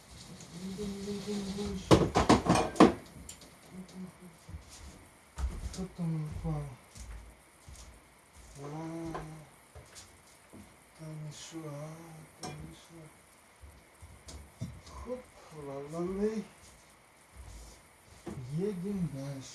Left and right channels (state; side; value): identical; both; correlation 1.00